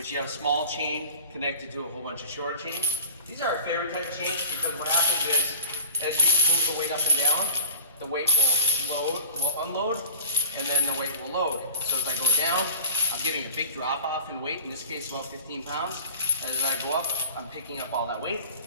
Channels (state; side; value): inverted; both; correlation -0.41